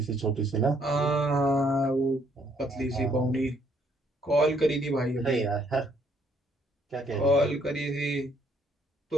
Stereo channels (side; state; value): both; normal; correlation 0.68